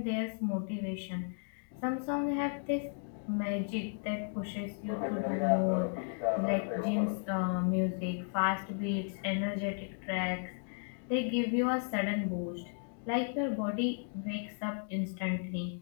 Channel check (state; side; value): silent; right; 55 dB below the other